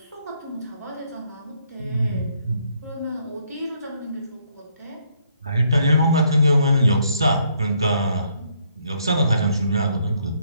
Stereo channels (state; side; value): inverted; both; correlation -0.70